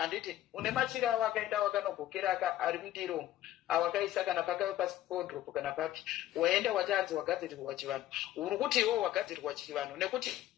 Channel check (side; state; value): right; quieter; 13.5 dB